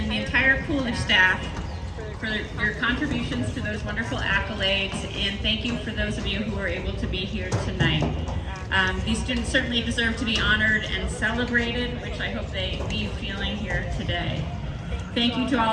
the entire Coolidge staff for your contributions to those wonderful accolades, and thank you for those of you who were able to be here tonight. These students certainly deserve to be honored and celebrated, which I hope they leave feeling here today. Thank you to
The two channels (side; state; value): both; identical; correlation 1.00